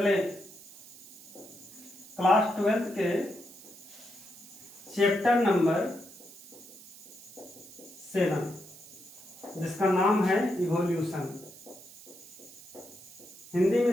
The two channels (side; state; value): right; noise; hiss, 18 dB below the sound